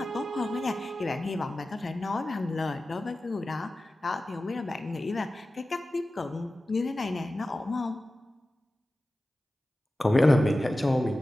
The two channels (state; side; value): normal; both; correlation 0.95